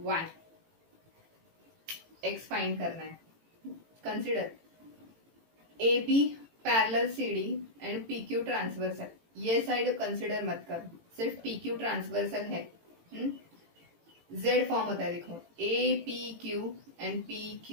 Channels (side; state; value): left; late; 18 ms